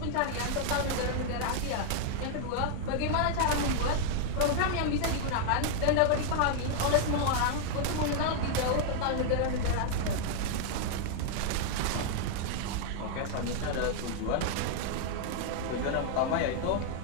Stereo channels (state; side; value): different; both; correlation 0.00